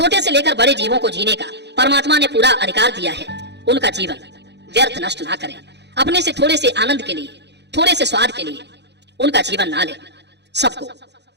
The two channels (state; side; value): late; left; 0.50 ms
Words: से लेकर बड़े जीवों को जीने का परमात्मा ने पूरा अधिकार दिया है। उनका जीवन व्यर्थ नष्ट ना करें। अपने से थोड़े से आनंद के लिए, थोड़े से स्वाद के लिए उनका जीवन ना लें। सबको